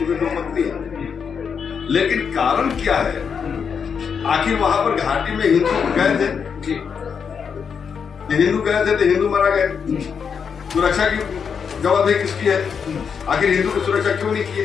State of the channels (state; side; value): quieter; right; 6.6 dB